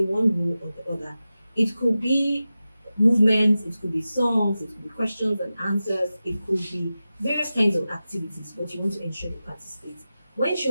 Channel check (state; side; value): inverted; both; correlation -0.94